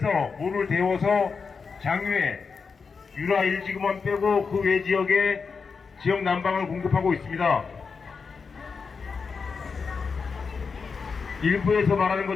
물을 데워서 장유에 유라 1지구만 빼고 그 외 지역에 지역 난방을 공급하고 있습니다. 일부에서 말하는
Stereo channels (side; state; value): right; quieter; 5.2 dB